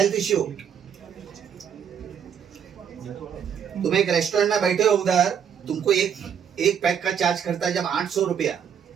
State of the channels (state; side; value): quieter; left; 8.0 dB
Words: issue? तुम एक रेस्टोरेंट में बैठे हो, उधर तुमको एक पैक का चार्ज करता है जब 800 रुपया,